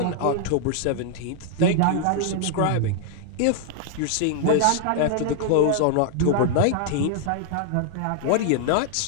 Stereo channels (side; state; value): both; different; correlation 0.00